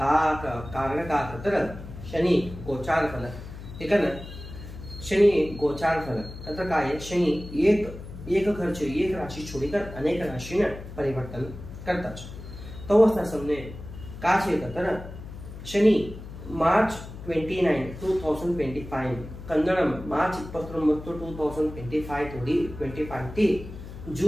का खतर शनि गोचार फल ठीक है ना। शनि गोचार फल खतर का है शनि एक खर्च एक राशि छोड़कर अनेक राशि ने परिवर्तन करता है। तो अवस्था समने का छे खतर शनि मार्च 29 2025 कन्नडम मार्च 29 2025 थोड़ी 25 थी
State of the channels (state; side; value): noise; left; hum, 12 dB below the sound